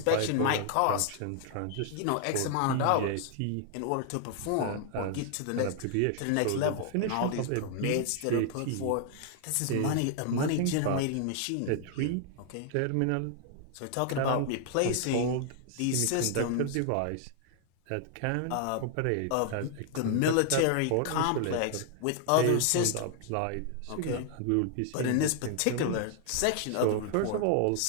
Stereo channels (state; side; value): different; both; correlation 0.00